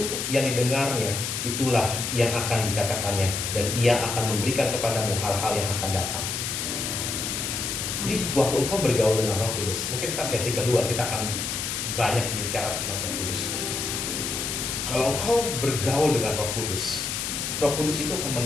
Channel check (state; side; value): noise; left; hiss, 3 dB below the sound